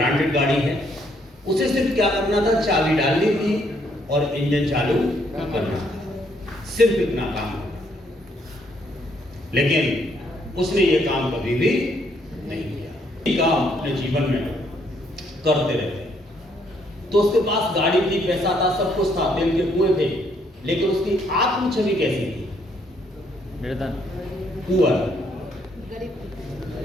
गाड़ी है, उसे सिर्फ क्या करना था? चाबी डालनी थी और इंजन चालू करना था, सिर्फ इतना काम। लेकिन उसने ये काम कभी भी नहीं किया। ये काम अपने जीवन में करते रहते। तो उसके पास गाड़ी थी, पैसा था, सब कुछ था, तेल के कुएं थे, लेकिन उसकी आत्म छवि कैसी थी? पुअर।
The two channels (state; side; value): normal; both; correlation 0.70